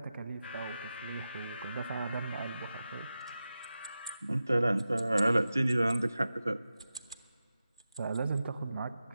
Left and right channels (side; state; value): both; inverted; correlation -0.92